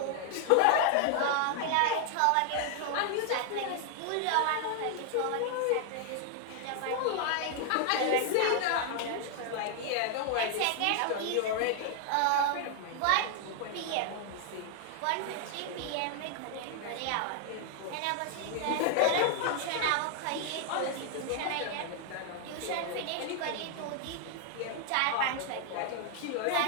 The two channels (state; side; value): different; both; correlation 0.00